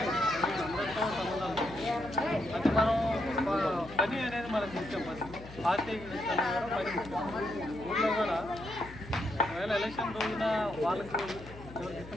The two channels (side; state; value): left; noise; hum, 16 dB below the sound